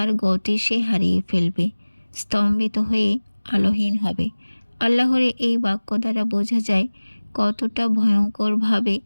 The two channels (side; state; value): both; inverted; correlation -1.00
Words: গতি সে হারিয়ে ফেলবে, স্তম্ভিত হয়ে আলোহীন হবে। আল্লাহর এই বাক্য দ্বারা বোঝা যায় কতটা ভয়ঙ্করভাবে